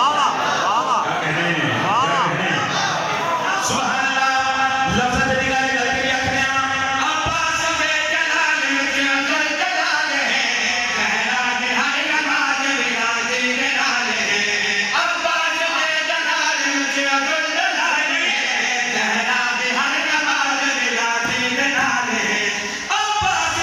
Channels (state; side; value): identical; both; correlation 1.00